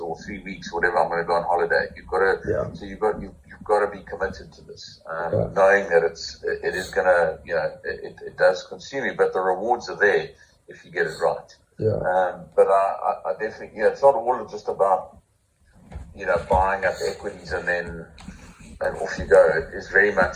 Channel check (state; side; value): identical; both; correlation 1.00